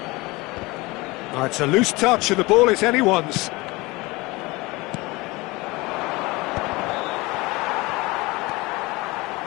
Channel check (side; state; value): right; quieter; 22.8 dB